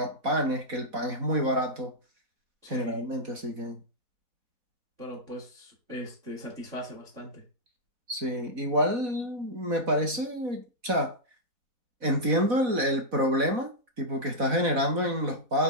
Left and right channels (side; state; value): left; late; 4.1 ms